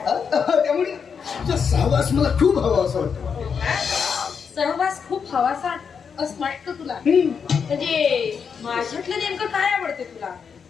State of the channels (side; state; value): right; quieter; 6.4 dB